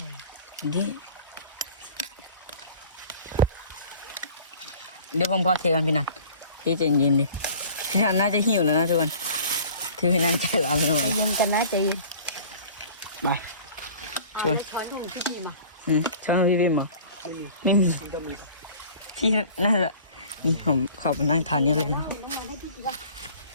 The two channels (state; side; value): inverted; both; correlation -0.46